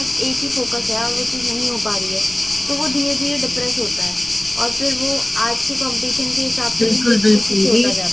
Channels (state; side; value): noise; left; rumble, 21 dB below the sound